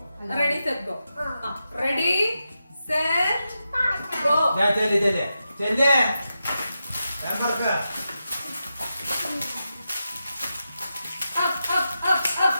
Ready set go. Ready set go.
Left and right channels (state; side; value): inverted; both; correlation -0.89